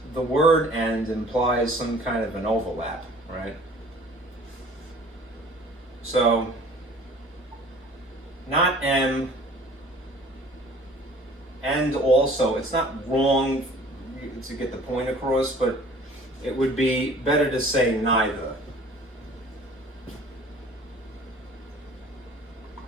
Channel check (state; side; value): normal; both; correlation 0.50